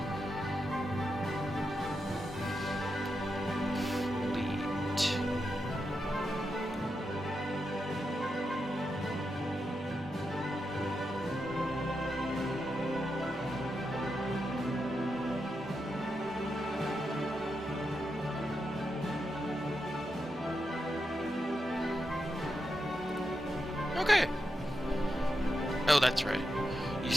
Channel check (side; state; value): both; normal; correlation 0.86